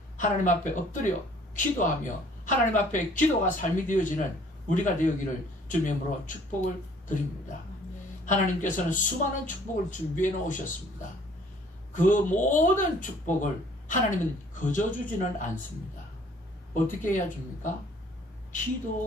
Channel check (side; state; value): both; normal; correlation 0.57